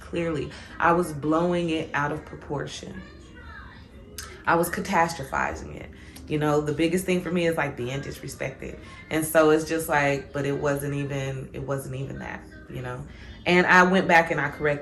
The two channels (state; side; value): identical; both; correlation 1.00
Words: I was blowing it out of proportion. I was catastrophizing it. The biggest thing for me is like being disrespected. And so it's just like, but it wasn't even that, And I went back and I